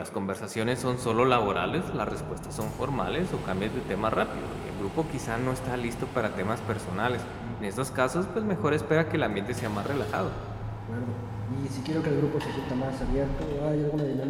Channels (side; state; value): both; identical; correlation 1.00